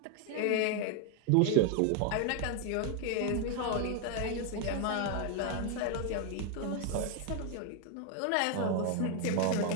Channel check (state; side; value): different; both; correlation 0.01